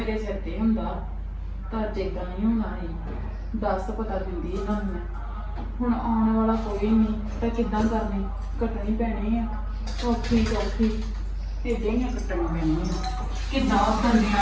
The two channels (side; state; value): both; identical; correlation 1.00